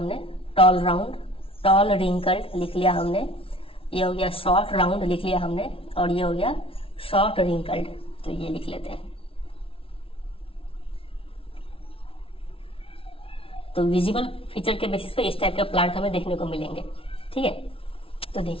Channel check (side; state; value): right; late; 0.26 ms